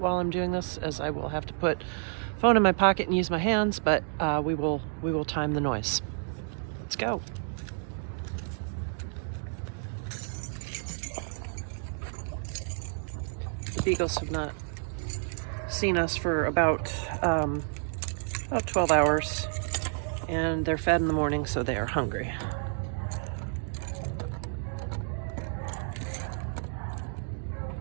I'm doing this, as I will have to put phone in my pocket and use my hands, but we will time the noise. Let's go. The beagles have not seen us for about 12 hours, and they're fed in the morning, so they are hungry.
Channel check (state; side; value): silent; left; 58 dB below the other